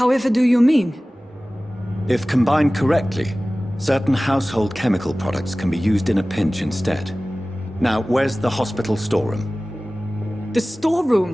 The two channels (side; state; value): both; normal; correlation 0.97